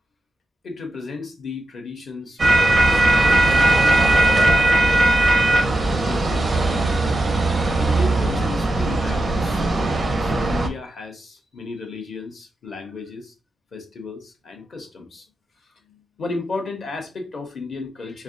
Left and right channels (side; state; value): both; normal; correlation 0.89